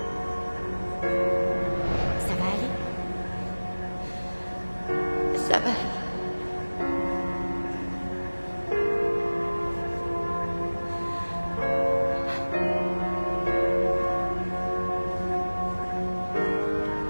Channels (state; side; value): inverted; both; correlation -1.00